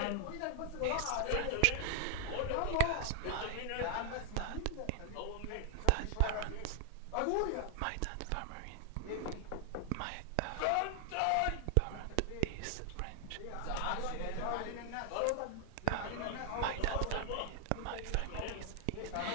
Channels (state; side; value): different; both; correlation 0.00